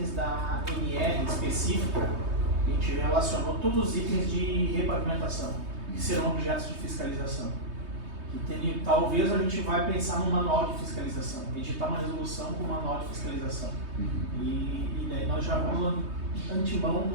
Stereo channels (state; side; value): late; left; 3.2 ms